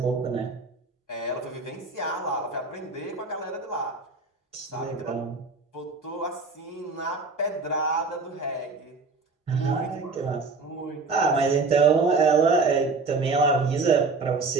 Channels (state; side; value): quieter; left; 4.0 dB